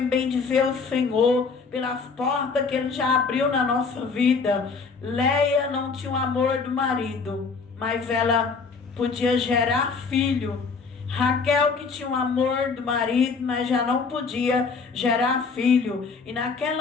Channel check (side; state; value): right; quieter; 4.9 dB